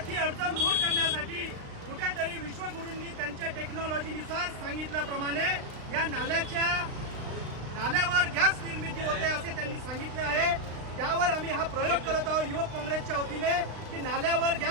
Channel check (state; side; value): late; left; 35 ms